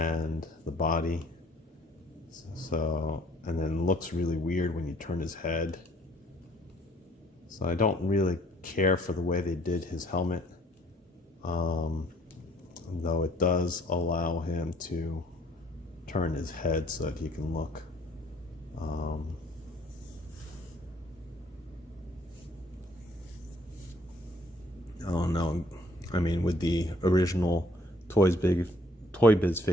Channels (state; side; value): normal; both; correlation 0.61